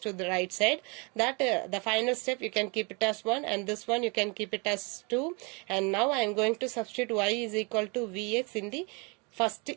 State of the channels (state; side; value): quieter; left; 31.1 dB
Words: the right side. That the final step you can keep it as 1 and this one you can keep it as 2. And now I am going to substitute y is equal to vx in the first